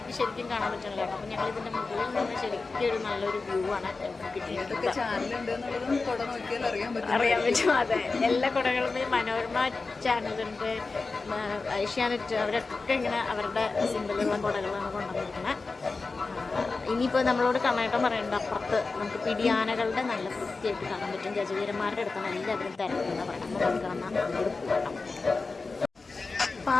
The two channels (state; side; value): quieter; right; 4.0 dB